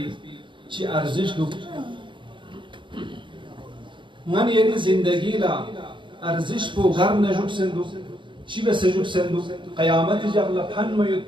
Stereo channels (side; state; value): left; late; 0.23 ms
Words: چی ارزش دو من یعنی زندگی لا ارزش بو غر نجوک سندو چی به سجوک سندو قیامت جغل پن میوت